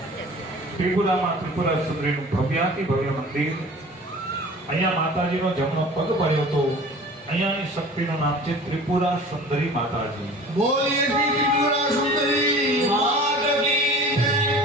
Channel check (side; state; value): both; normal; correlation 0.42